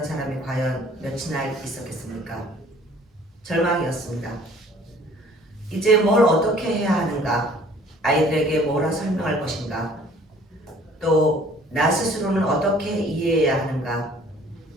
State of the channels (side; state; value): both; normal; correlation 0.54